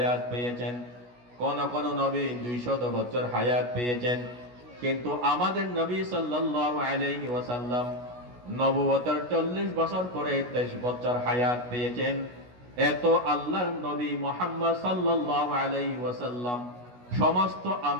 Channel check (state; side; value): late; left; 16 ms